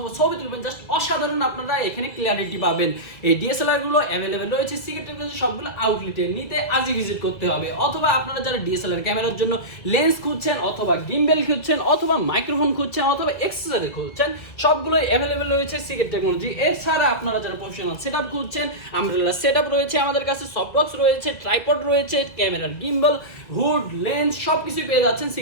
ছবি তুলবেন, জাস্ট অসাধারণ আপনারা এখানে ক্লিয়ারিটি পাবেন। এই ডিএসএলআর গুলো অ্যাভেলেবেল রয়েছে সিকেটের কাছে সবগুলো আউটলেটে। নিতে আজই ভিজিট করতে হবে। অথবা আপনারা যারা ডিএসএলআর ক্যামেরার জন্য লেন্স খুঁজছেন অথবা গিম্বেল খুঁজছেন অথবা মাইক্রোফোন খুঁজছেন অথবা এক্সেসরি খুঁজছেন, সবগুলোই অ্যাভেলেবেল রয়েছে সিকেট টেকনোলজি। এছাড়া আপনারা যারা প্রফেশনাল সেটআপ খুঁজছেন, আমব্রেলা সেটআপ রয়েছে আমাদের কাছে, সফট বক্স রয়েছে, ট্রাইপড রয়েছে, ক্যামেরার গিম্বল, হুড, লেন্স সবকিছু পেয়ে যাচ্ছেন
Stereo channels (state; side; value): late; right; 1.7 ms